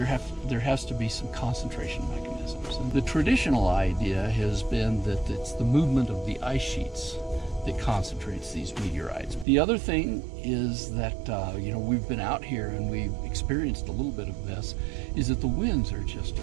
has to be some concentration mechanisms. And the traditional idea has been that it's the movement of the ice sheets that concentrates these meteorites. The other thing is that we've been out here and we've experienced a little bit of this, is that the winds are just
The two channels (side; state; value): left; drops out; at 9.5 s